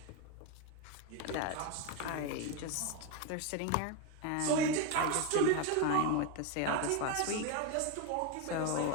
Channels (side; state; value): both; different; correlation 0.02